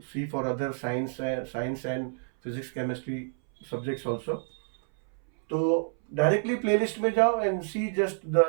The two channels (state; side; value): silent; left; 59 dB below the other